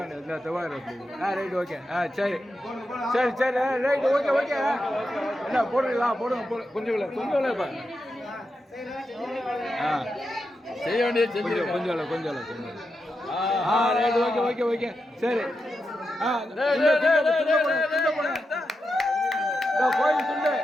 இந்த தவார் ரைட் ஓகே. சரி ரைட் ஓகே. என்ன போடுங்க கொஞ்சம் இப்போ செய்ய வேண்டியது செஞ்சு கொஞ்சம் ரைட் ஓகே. சரி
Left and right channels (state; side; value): normal; both; correlation 0.88